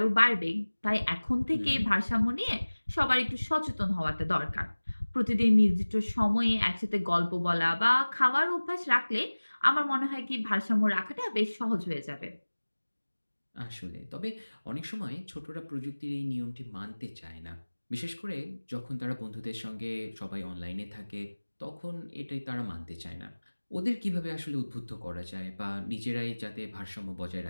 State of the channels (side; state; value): both; inverted; correlation -1.00